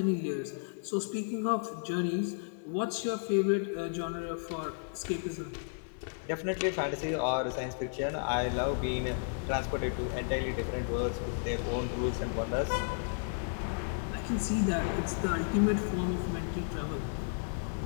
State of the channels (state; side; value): silent; right; digital silence